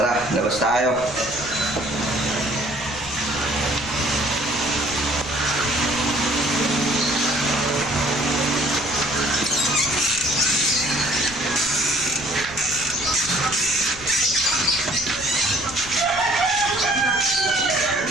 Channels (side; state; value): left; noise; rumble, 16 dB below the sound